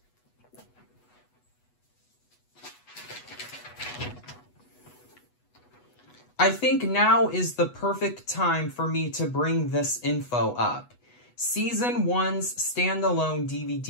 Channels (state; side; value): late; right; 8.1 ms